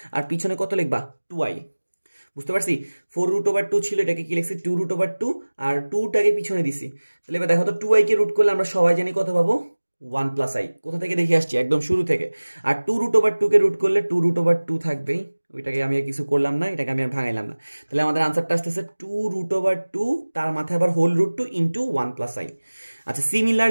আর পিছনে কত লিখবা 2i। বুঝতে পারছি, 4√2 ছিল, এটাকে কি লিখছি 2√2, আর 2টাকে পিছনে দিছি। তাহলে এবার দেখো তো 2i কে রুট করলে আমরা সবাই জানি কত পাবো 1+i, কোথা থেকে দেখে আসছি একদম শুরু থেকে। আর 2√2 কে রুট করলে 2√2 থাকবেই, ওইটাকে আমি আর কিছু করলাম না, এটাকে আমি আর ভাঙাইলাম না। তাহলে আমাদের আনসারটা আসতেছে 2√2, তার মাথায় আবার হোল √2 ইন্টু 1+i। আচ্ছা,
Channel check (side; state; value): both; inverted; correlation -1.00